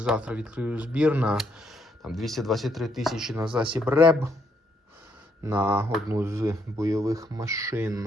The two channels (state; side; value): normal; both; correlation 0.73